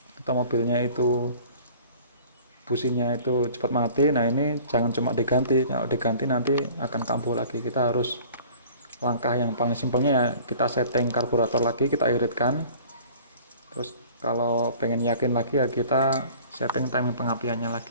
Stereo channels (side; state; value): both; inverted; correlation -0.48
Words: atau mobilnya itu businya itu cepat mati, nah ini jangan cuma diganti. Kalau diganti nanti akan kambuh lagi. Kita harus langkah yang paling simpelnya ya, kita setting karburator lagi, kita iritkan. Terus kalau pengen yakin lagi ya kita setting timing pengapiannya